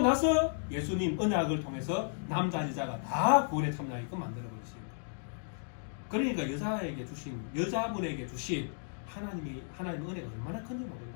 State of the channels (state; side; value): silent; right; digital silence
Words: 나서 예수님 언약을 통해서 남자 여자가 다 구원에 참여하게끔 만들어버리십니다. 그러니까 여자분에게 주신 하나님의 은혜가 얼마나 큰지 모른다는